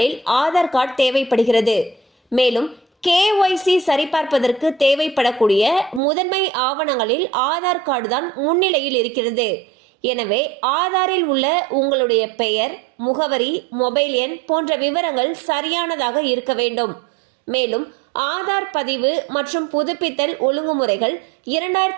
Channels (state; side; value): drops out; left; at 6.0 s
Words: ஆதார் கார்டு தேவைப்படுகிறது. மேலும் KYC சரிபார்ப்பதற்கு தேவைப்படக்கூடிய முதன்மை ஆவணங்களில் ஆதார் கார்டு தான் முன்னிலையில் இருக்கிறது. எனவே ஆதாரில் உள்ள உங்களுடைய பெயர், முகவரி, மொபைல் எண் போன்ற விவரங்கள் சரியானதாக இருக்க வேண்டும். மேலும் ஆதார் பதிவு மற்றும் புதுப்பித்தல் ஒழுங்குமுறைகள்